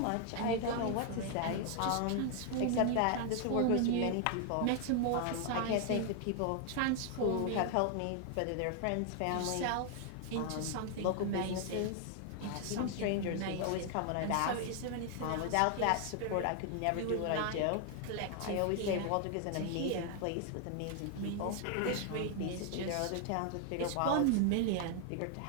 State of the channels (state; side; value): different; both; correlation 0.00